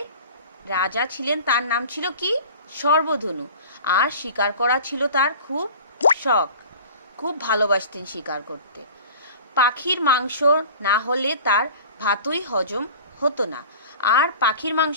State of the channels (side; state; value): both; inverted; correlation -0.41